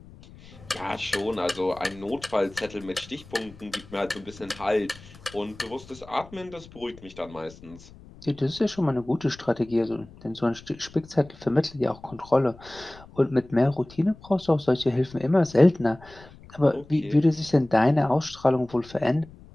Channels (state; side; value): noise; left; rumble, 21 dB below the sound